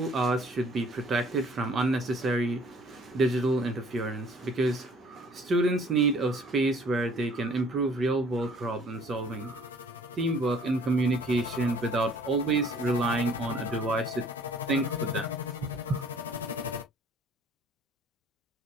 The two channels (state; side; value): normal; both; correlation 0.55